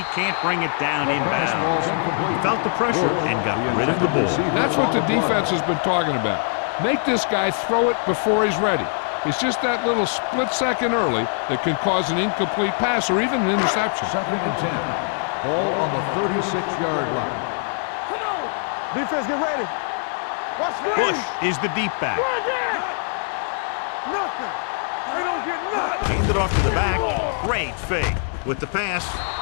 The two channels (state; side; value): silent; right; 64 dB below the other